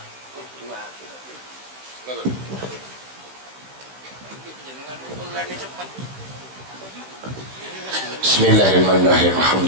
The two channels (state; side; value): late; left; 15 ms